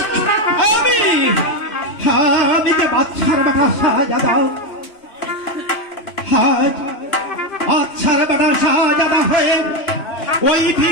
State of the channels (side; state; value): right; late; 2.9 ms